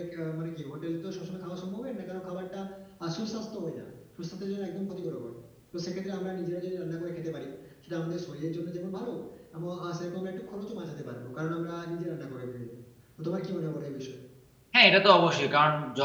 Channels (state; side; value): identical; both; correlation 1.00